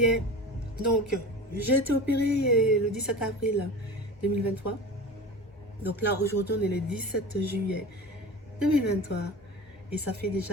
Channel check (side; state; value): both; normal; correlation 0.33